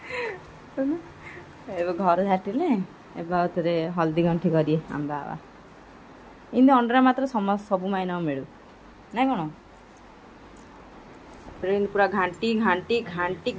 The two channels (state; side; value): identical; both; correlation 1.00